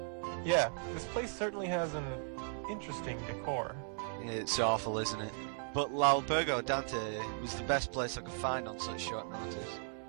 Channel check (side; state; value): left; silent; digital silence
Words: Yeah, this place certainly has an interesting decor. It's awful, isn't it? But L'Albergo Dante was the best place I could find on such short notice.